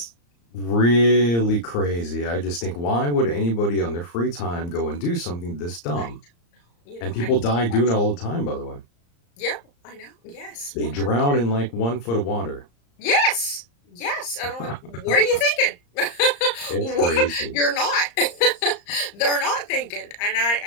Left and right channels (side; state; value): right; late; 34 ms